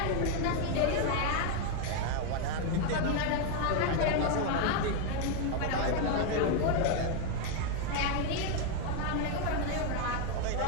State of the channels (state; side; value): different; both; correlation 0.01